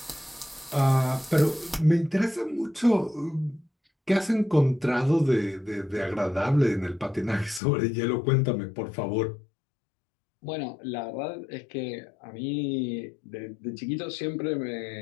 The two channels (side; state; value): right; drops out; at 7.6 s